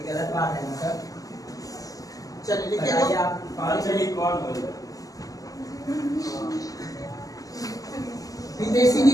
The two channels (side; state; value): right; late; 0.17 ms